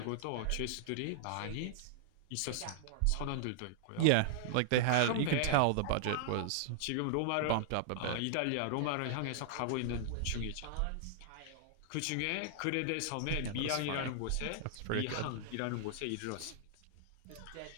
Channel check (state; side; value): different; both; correlation -0.01